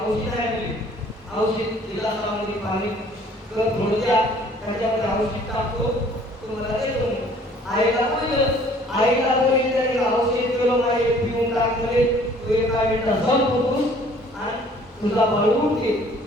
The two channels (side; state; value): both; normal; correlation 0.55